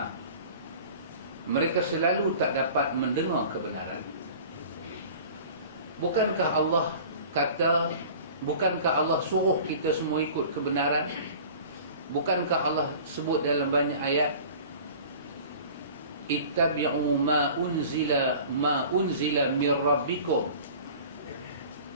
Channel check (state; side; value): inverted; both; correlation -0.42